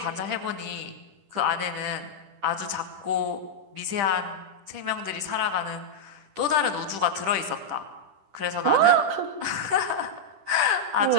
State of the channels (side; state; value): left; late; 10 ms